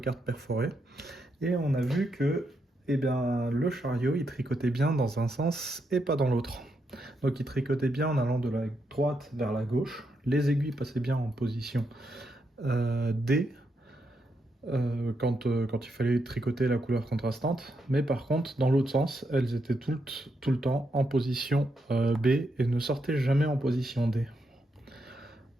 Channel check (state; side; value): normal; both; correlation 0.81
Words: perforées et on a vu que le chariot il tricotait bien dans un sens et pas dans l'autre. Donc il tricotait bien en allant de la droite vers la gauche, les aiguilles passaient bien en position D quand il fallait tricoter la couleur contrastante, mais par contre, dans l'autre sens, elles étaient tout le temps en position B et ne sortaient jamais en position D.